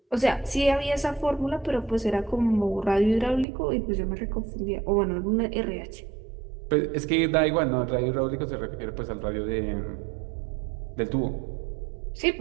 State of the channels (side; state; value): left; drops out; at 3.5 s